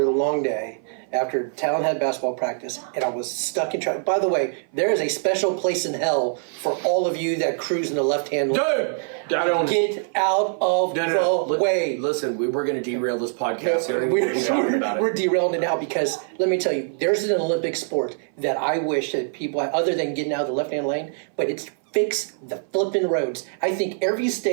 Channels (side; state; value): left; silent; 58 dB below the other